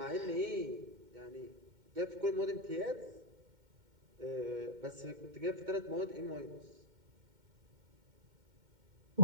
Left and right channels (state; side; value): late; left; 2.1 ms